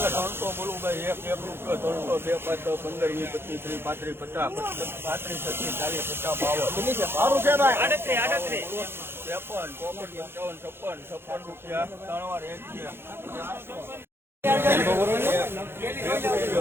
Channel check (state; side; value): late; left; 0.11 ms